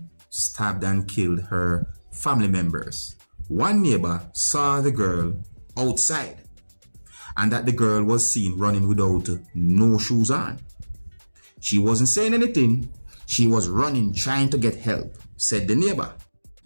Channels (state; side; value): inverted; both; correlation -1.00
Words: stabbed and killed her family members. One neighbor saw the girl outside and that the girl was seen running without no shoes on. She wasn't saying anything. She was running trying to get help, said the neighbor.